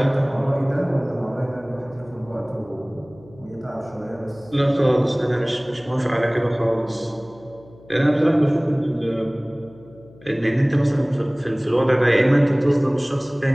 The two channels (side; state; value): left; noise; hum, 24 dB below the sound